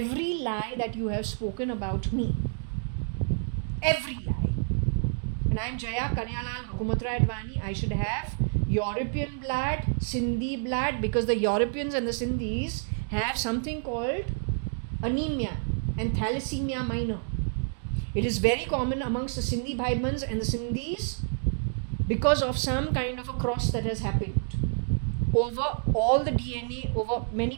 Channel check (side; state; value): left; silent; digital silence